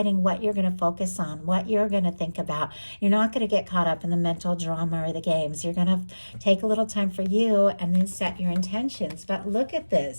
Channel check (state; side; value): inverted; both; correlation -1.00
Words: what you're going to focus on, what you're going to think about. You're not going to get caught up in the mental drama or the games. You're going to take a little time for you and then set your intentions. But look at